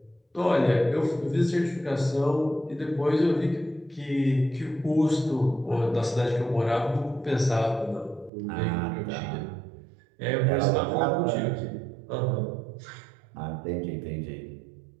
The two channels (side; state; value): left; drops out; at 8.3 s